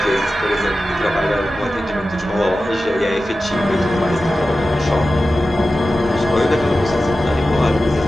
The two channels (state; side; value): normal; both; correlation 0.94